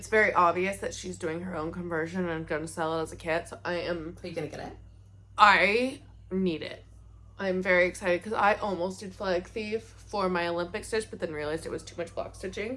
very obvious that she's doing her own conversion and going to sell it as a kit. So Are you gonna get it? I need it. I'm very excited because I almost did Flag Thief for my Olympic stitch, but then realized it was too much block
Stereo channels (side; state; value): both; identical; correlation 1.00